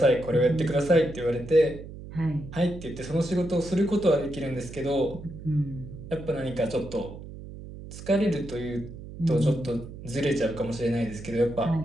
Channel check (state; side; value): noise; right; hum, 13 dB below the sound